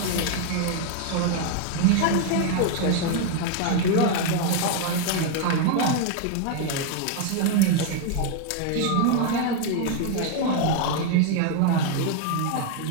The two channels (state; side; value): different; both; correlation 0.01